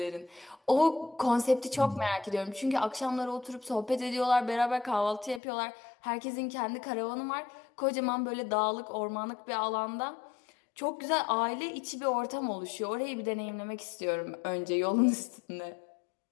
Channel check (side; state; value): right; drops out; at 5.4 s